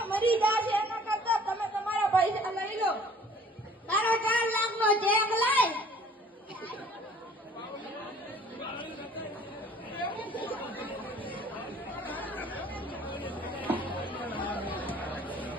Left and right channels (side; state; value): both; normal; correlation 0.53